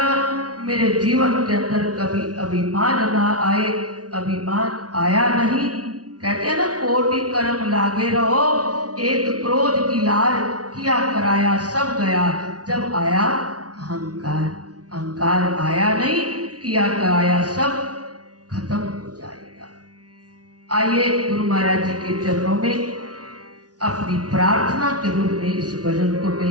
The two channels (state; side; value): late; left; 0.68 ms